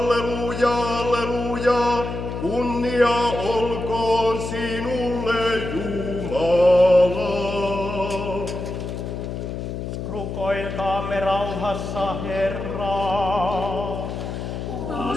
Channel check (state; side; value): noise; left; hum, 5 dB below the sound